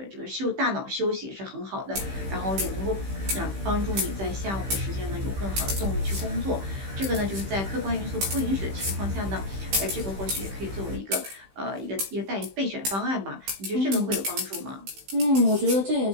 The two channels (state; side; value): late; left; 15 ms